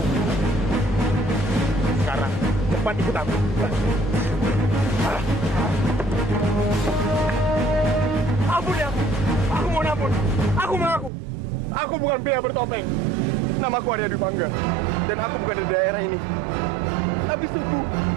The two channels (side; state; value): left; drops out; at 11.1 s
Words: Sekarang cepat ikut aku. Ampun ya. Aku mohon ampun. Aku mengaku. Aku bukan pria bertopeng. Namaku Arya Dwi Pangga. Dan aku bukan dari daerah ini. Tapi sungguh,